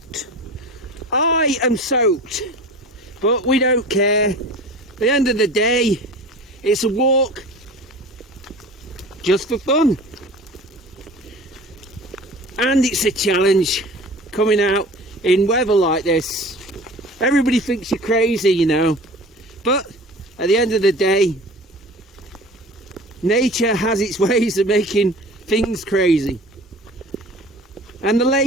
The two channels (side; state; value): both; normal; correlation 0.40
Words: I am soaked, but we don't care. At the end of the day, it's a walk just for fun, and it's a challenge coming out in weather like this. Everybody thinks you're crazy, you know, but at the end of the day, nature has its ways of making things crazy. And the